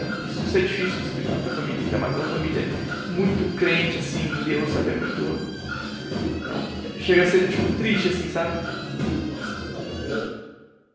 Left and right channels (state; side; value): identical; both; correlation 1.00